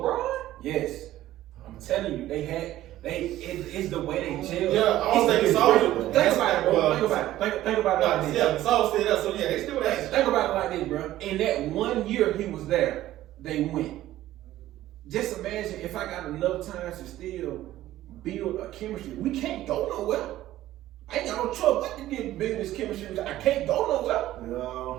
Yes. I'm telling you, it's the way they gel. Yeah, I don't think it's all. Think about it, bro. Think about it like this. Yeah, it's all still there. So yeah, they still there. Think about it like this, bro. In that 1 year he was there, they went. Just imagine if I got enough time to still build a chemistry. We can't go nowhere. I ain't got no trouble but to get business chemistry. I can't go nowhere.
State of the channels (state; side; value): quieter; left; 14.4 dB